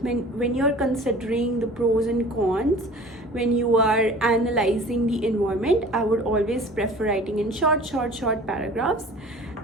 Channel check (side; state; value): both; normal; correlation 0.44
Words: when you're considering the pros and cons, when you are analyzing the environment, I would always prefer writing in short paragraphs,